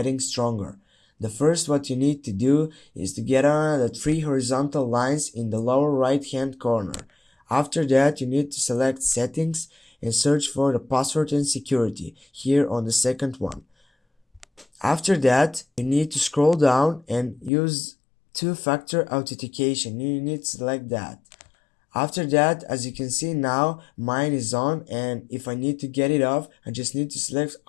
stronger. The first what you need to do is to get on the three horizontal lines in the lower right hand corner. After that, you need to select Settings and search for the password and security here on the second one. After that, you need to scroll down and use two-factor authentication. You need to select that. After that, as you can see now, mine is on, and if I need to get it off, I just need to select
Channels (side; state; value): right; drops out; at 17.5 s